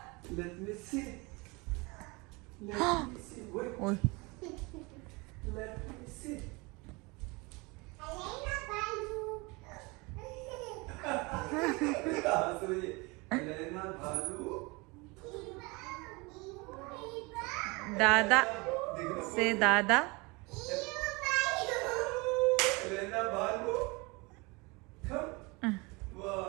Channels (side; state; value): left; quieter; 26.4 dB